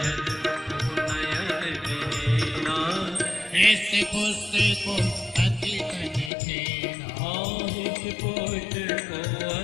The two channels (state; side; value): drops out; right; at 6.3 s